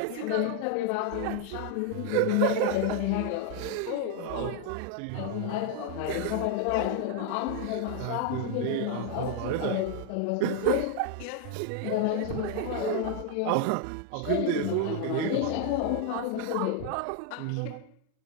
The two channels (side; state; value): both; different; correlation 0.00